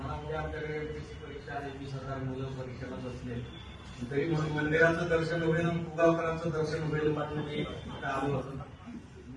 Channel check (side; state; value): both; identical; correlation 1.00